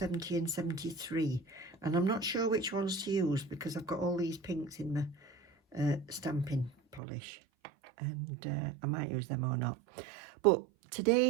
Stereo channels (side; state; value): left; drops out; at 7.0 s